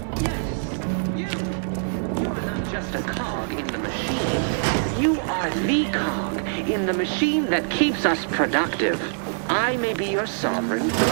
Yes, you. You are not just a cog in the machine. You are the cog in the machine that keeps us productive. I may be your sovereign.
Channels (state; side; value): silent; left; 62 dB below the other